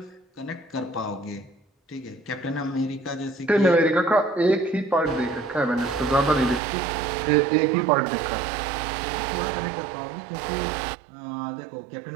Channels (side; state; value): left; drops out; at 6.6 s